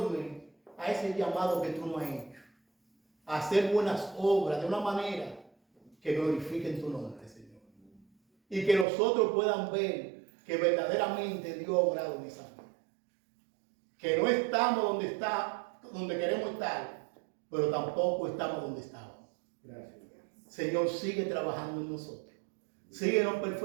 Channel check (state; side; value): drops out; left; at 8.8 s